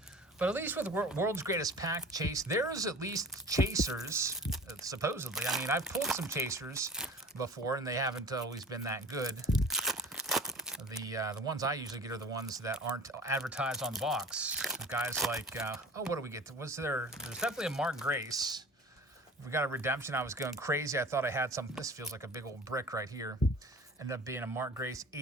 But at least with World's Greatest Pack Chase, there's at least chasers, supposedly. I mean, I've pulled some chasers before, and they haven't always been that good. The ones I usually get are the ones that aren't advertised on the box. Guys like, what do we get? There's definitely a Mark Grace. We got a redemption. I was going crazy. I thought I had some. This feels like a big old brick right here. Ended up being a Mark Grace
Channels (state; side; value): normal; both; correlation 0.41